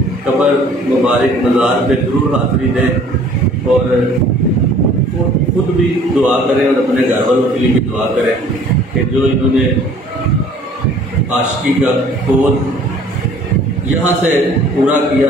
कब्र मुबारक मज़ार पे ज़रूर हाज़िरी दें और खुद भी दुआ करें और अपने घर वालों के लिए भी दुआ करें कि जो इन्होंने आशिकी का कोड यहाँ से पूरा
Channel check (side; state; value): both; normal; correlation 0.53